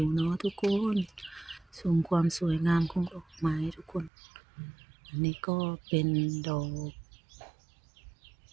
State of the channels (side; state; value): left; drops out; at 4.1 s